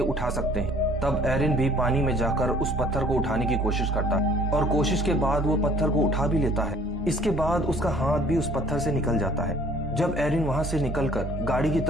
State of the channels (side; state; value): both; normal; correlation 0.56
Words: उठा सकते हैं। तब एरन भी पानी में जाकर उस पत्थर को उठाने की कोशिश करता है और कोशिश के बाद वो पत्थर को उठा भी लेता है। इसके बाद उसका हाथ भी उस पत्थर से निकल जाता है। जब एरन वहां से निकलकर गाड़ी की